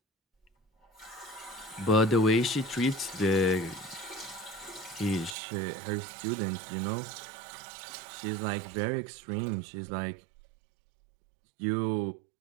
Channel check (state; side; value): drops out; left; at 5.4 s